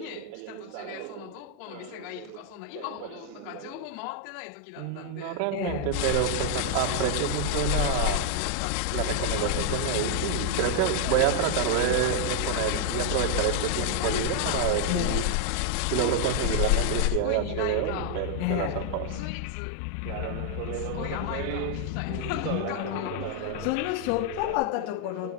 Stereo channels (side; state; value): both; different; correlation 0.00